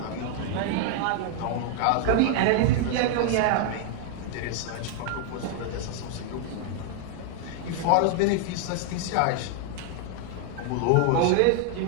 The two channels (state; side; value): different; both; correlation 0.00